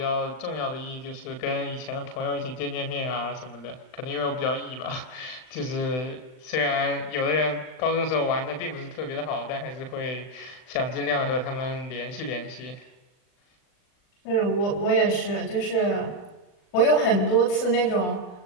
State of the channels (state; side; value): late; right; 39 ms